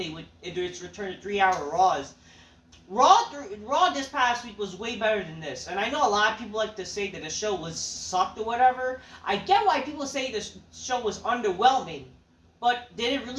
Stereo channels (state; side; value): identical; both; correlation 1.00